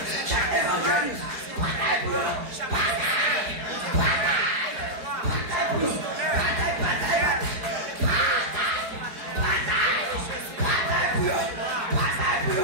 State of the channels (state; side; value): late; left; 4.7 ms